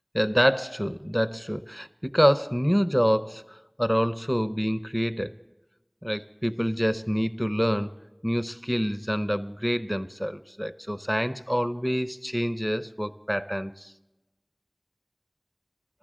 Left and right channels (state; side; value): identical; both; correlation 1.00